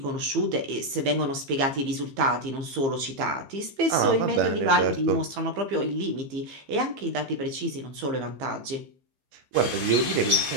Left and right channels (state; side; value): late; left; 15 ms